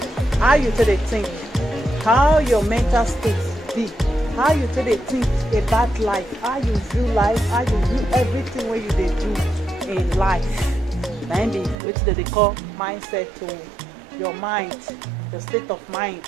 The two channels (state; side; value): drops out; left; at 11.8 s